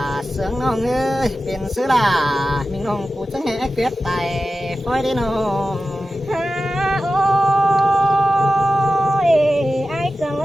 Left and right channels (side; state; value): both; normal; correlation 0.93